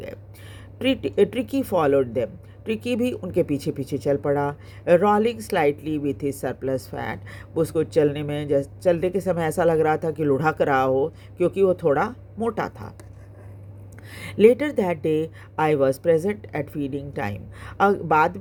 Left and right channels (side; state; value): both; identical; correlation 1.00